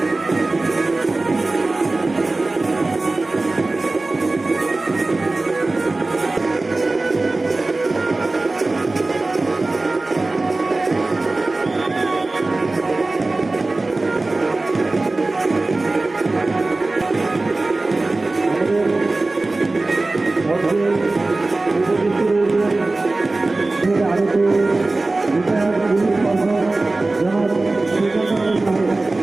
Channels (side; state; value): left; quieter; 3.2 dB